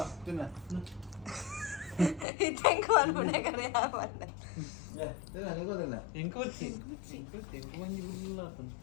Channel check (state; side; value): drops out; right; at 2.2 s